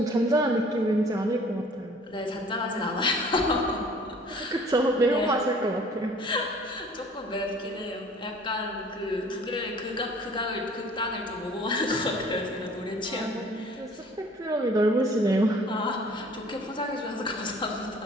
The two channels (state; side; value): normal; both; correlation 0.52